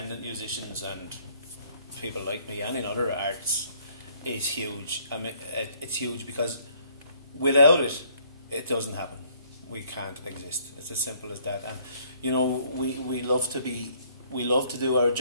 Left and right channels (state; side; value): inverted; both; correlation -0.63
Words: musicians and people like me and in other arts is huge. I mean, it's huge because without it, it doesn't happen. We can't exist. It's as simple as that. And you know, we love to do our